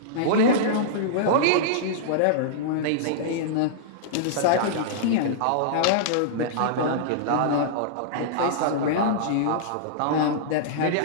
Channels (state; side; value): different; both; correlation -0.03